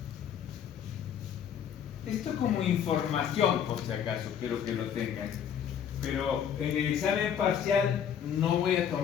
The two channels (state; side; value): quieter; right; 8.6 dB